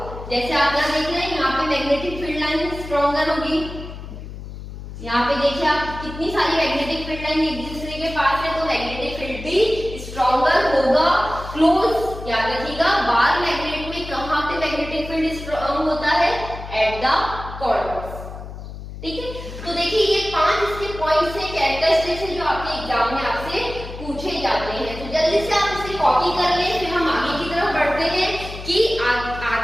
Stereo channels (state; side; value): noise; left; hum, 11 dB below the sound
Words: जैसे आप यहाँ देख रहे हैं, यहाँ पे मैग्नेटिक फील्ड लाइन स्ट्रॉन्गर होगी। यहाँ पे देखिए आप कितनी सारी मैग्नेटिक फील्ड लाइन एक दूसरे के पास है, तो मैग्नेटिक फील्ड भी स्ट्रॉन्गर होगा। क्लोज याद रखिएगा, बार मैग्नेट में कहाँ पे मैग्नेटिक फील्ड स्ट्रॉन्ग होता है? At the corners. ठीक है, तो देखिए ये 5 इसके पॉइंट्स है, कैरेक्टरिस्टिक्स है जो आपके एग्जाम में आपसे पूछे जाते हैं। तो जल्दी से आप इसे कॉपी कर लें, फिर हम आगे की तरफ बढ़ते हैं कि